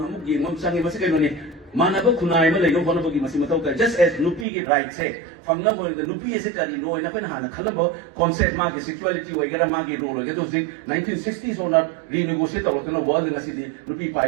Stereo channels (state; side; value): drops out; left; at 4.5 s